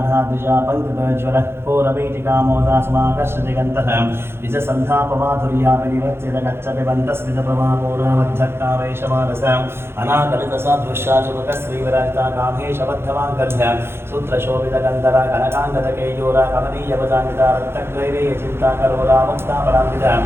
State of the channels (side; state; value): left; late; 0.12 ms